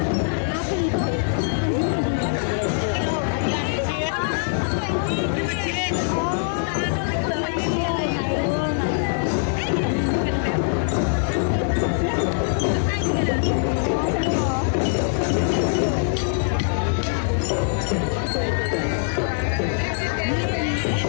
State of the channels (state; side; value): silent; right; digital silence